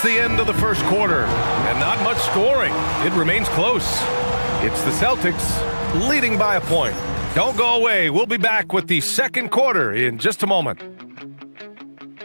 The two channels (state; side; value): inverted; both; correlation -1.00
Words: the end of the first quarter. And not much scoring. It remains close. It's the Celtics leading by a point. Don't go away. We'll be back with the second quarter in just a moment.